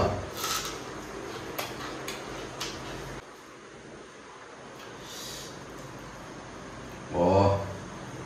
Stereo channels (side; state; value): both; identical; correlation 1.00